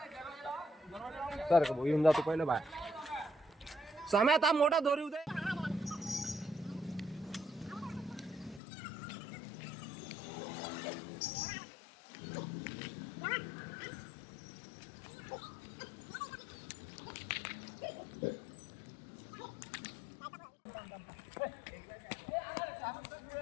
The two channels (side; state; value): right; drops out; at 8.6 s